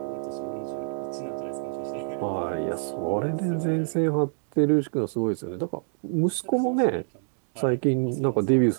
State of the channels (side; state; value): left; silent; digital silence